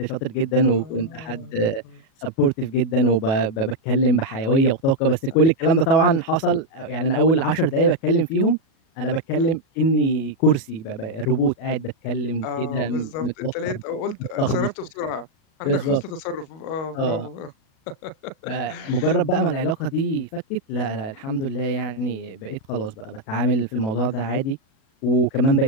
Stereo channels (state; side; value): late; right; 37 ms